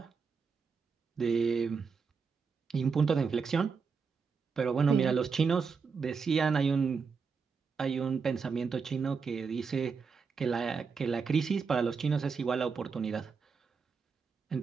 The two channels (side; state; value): left; quieter; 5.4 dB